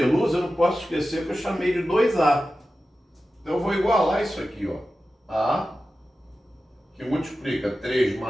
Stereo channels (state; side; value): normal; both; correlation 0.93